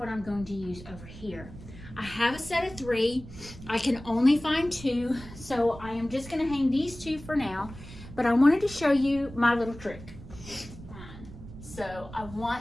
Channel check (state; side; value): noise; right; rumble, 15 dB below the sound